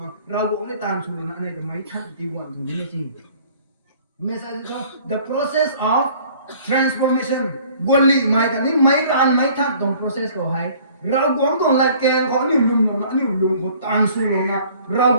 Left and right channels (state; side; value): inverted; both; correlation -0.54